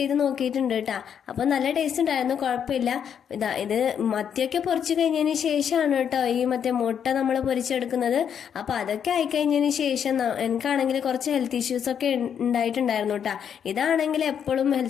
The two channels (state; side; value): quieter; right; 8.2 dB